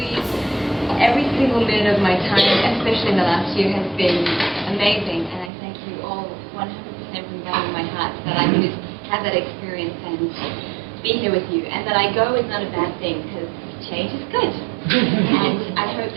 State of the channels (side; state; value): left; drops out; at 5.5 s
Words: single minute of my time, especially in the last year, has been amazing, and I thank you all 100% from the bottom of my heart that I could have that experience and be here with you, and that I go is not a bad thing, because change is good. And I hope